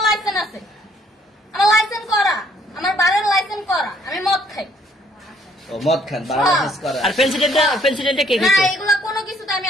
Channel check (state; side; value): normal; both; correlation 0.64